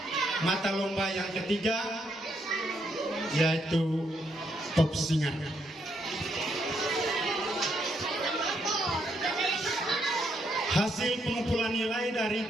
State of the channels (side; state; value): both; normal; correlation 0.76